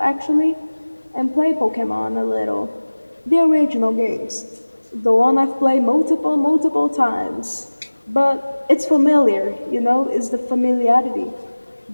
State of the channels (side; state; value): both; inverted; correlation -1.00